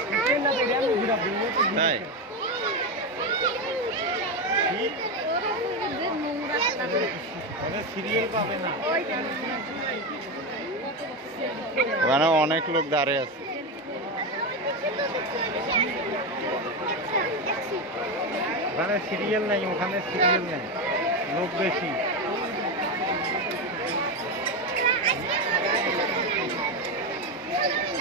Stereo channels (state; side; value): normal; both; correlation 0.13